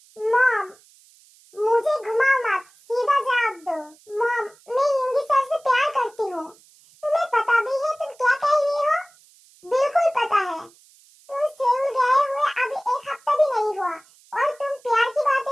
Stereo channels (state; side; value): noise; right; hiss, 28 dB below the sound